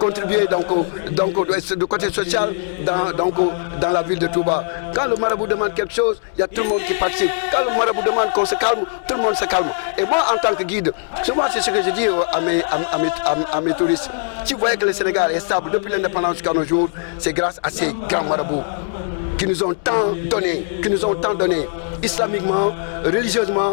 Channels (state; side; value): silent; right; digital silence